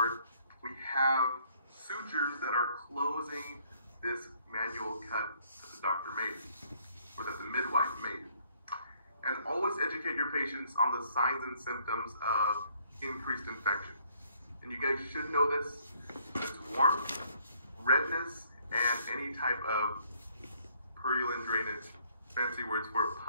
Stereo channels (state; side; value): inverted; both; correlation -0.65